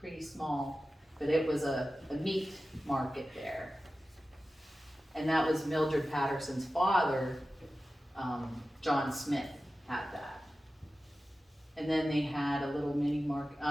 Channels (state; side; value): normal; both; correlation 0.94